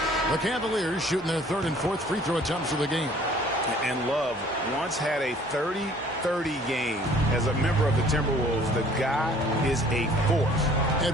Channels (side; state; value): both; normal; correlation 0.54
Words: The Cavaliers shooting their third and fourth free throw attempts of the game. And Love once had a 30-30 game as a member of the Timberwolves. The guy is a force.